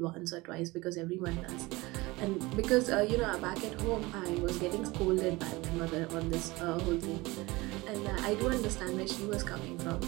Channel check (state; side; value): quieter; left; 22.0 dB